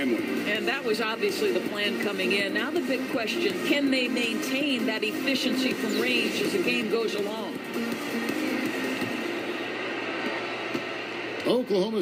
And that was obviously the plan coming in. Now the big question, can they maintain that efficiency from range as the game goes along? Oklahoma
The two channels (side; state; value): both; identical; correlation 1.00